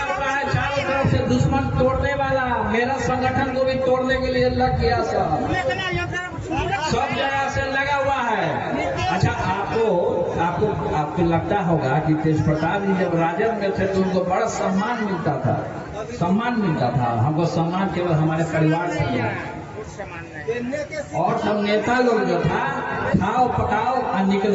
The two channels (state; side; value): identical; both; correlation 1.00